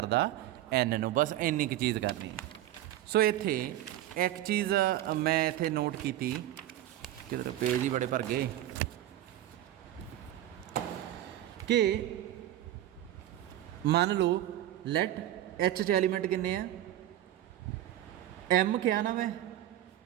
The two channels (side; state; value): left; quieter; 13.4 dB